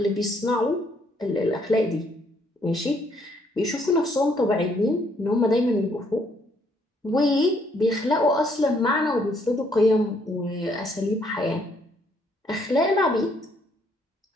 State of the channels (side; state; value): both; normal; correlation 0.69